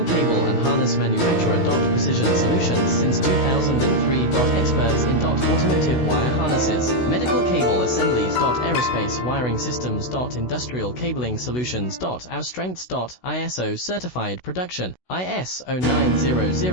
cable and harness manufacturer. Precision solutions since 2003. Experts in automotive wire harnesses, medical cable assemblies. Aerospace wiring systems. Industrial cabling solutions. Our strengths. ISO certified production, ISO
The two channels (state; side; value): late; right; 16 ms